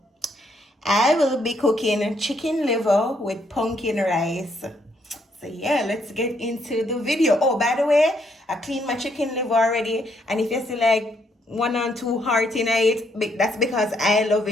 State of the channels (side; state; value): both; normal; correlation 0.72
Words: I will be cooking chicken liver with pumpkin rice. So yeah, let's get into the video. Oh, by the way, I cleaned my chicken liver already, and if you see like one or two heart in it, that's because I love